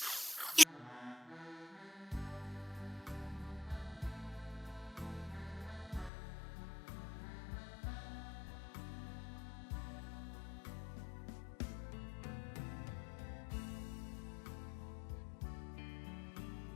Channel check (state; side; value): drops out; right; at 6.1 s